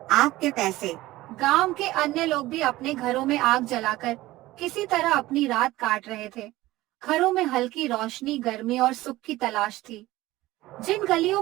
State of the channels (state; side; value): quieter; left; 17.5 dB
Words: आपके पैसे। गांव के अन्य लोग भी अपने घरों में आग जलाकर किसी तरह अपनी रात काट रहे थे। घरों में हल्की रोशनी, गर्मी और सुख की तलाश थी। जिन गलियों